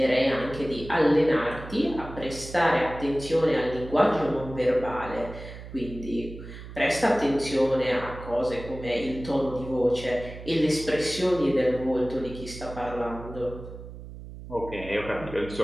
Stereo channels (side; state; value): right; noise; hum, 13 dB below the sound